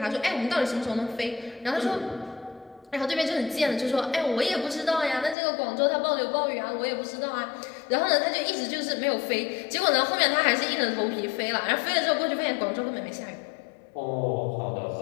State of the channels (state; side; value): drops out; right; at 5.4 s